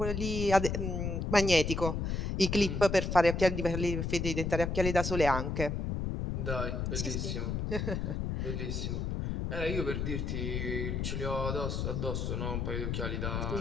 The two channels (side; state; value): left; noise; rumble, 1 dB below the sound